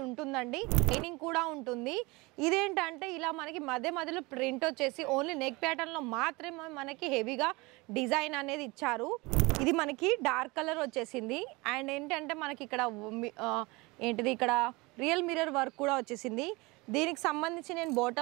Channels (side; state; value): left; quieter; 24.3 dB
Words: ఉంటుందండి. షైనింగ్ కూడా ఉంటుంది. ఇదేంటంటే ఇలా మనకి మధ్యలో ప్రింట్ వచ్చేసి ఓన్లీ నెక్ ప్యాటర్న్ లో మాత్రమే మనకి హెవీగా డిజైన్ అనేది ఇచ్చారు. ఇది మనకి డార్క్ కలర్ వచ్చేసింది అండ్ ఏంటంటే మనకి ఇక్కడ ఇక్కడ రియల్ మిర్రర్ వర్క్ కూడా వచ్చేసింది. దీనికి సంబంధించి నేను